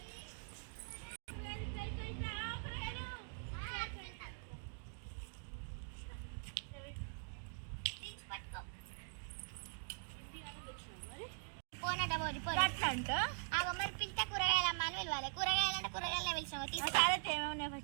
మరి పిలితే కూరగాయలమ్మా అని పిలవాలి కూరగాయలు అంటే కూరగాయలు పిలిచాము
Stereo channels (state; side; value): silent; left; digital silence